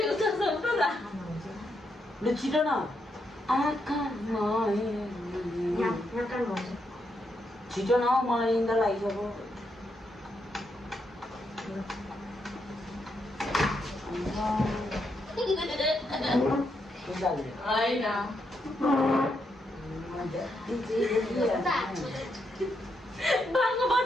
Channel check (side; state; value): both; normal; correlation 0.80